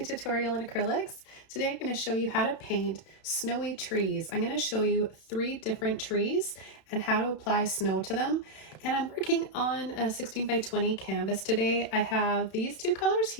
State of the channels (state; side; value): late; right; 32 ms